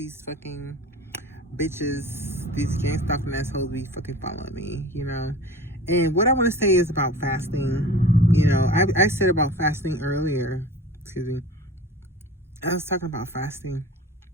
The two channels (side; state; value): both; normal; correlation 0.38